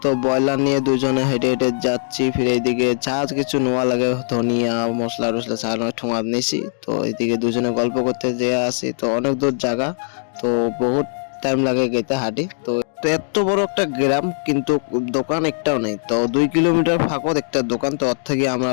তো ব্রয়লার নিয়ে দুজনে হেঁটে হেঁটে যাচ্ছি। ফিরে এইদিকে যা কিছু নেওয়া লাগে, ধনিয়া মশলা টসলা ছাড়ানো ঠোঙা নিয়েছি। তো এইদিকে দুজনে গল্প করতে যেয়ে আসি। তো অনেক দূর জায়গা, তো বহুত টাইম লাগে যেতে হাঁটি। তো তো এত বড় একটা গ্রাম, কিন্তু দোকান একটাও নেই। তো 2 কিলোমিটার ফাঁকত একটা দোকান, তো ওর থেকে আমরা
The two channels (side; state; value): right; silent; digital silence